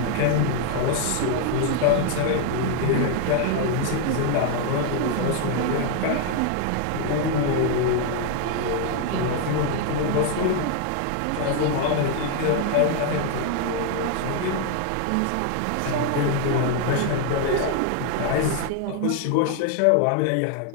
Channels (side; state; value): both; different; correlation 0.00